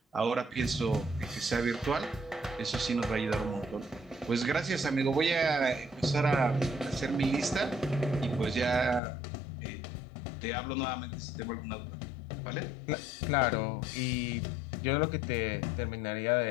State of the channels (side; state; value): right; drops out; at 9.0 s